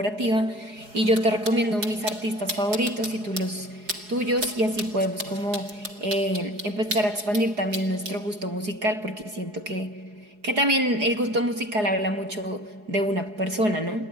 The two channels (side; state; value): left; late; 4.8 ms